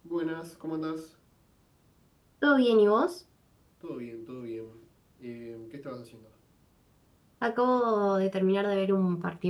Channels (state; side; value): identical; both; correlation 1.00